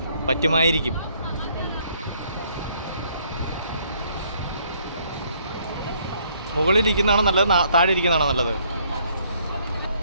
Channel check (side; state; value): both; inverted; correlation -0.66